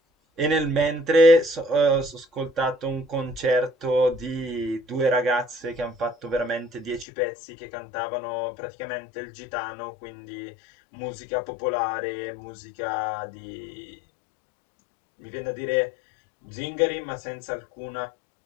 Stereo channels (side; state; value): right; drops out; at 7.1 s